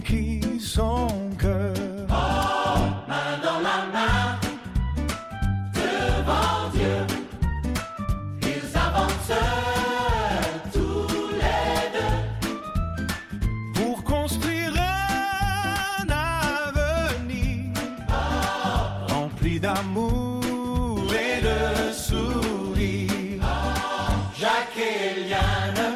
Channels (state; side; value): identical; both; correlation 1.00